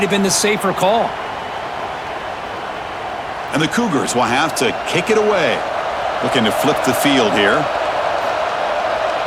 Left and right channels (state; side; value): identical; both; correlation 1.00